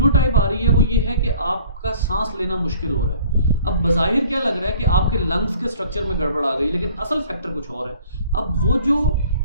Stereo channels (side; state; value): both; inverted; correlation -0.52